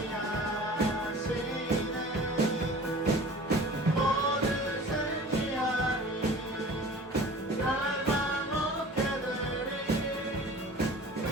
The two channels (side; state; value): both; normal; correlation 0.42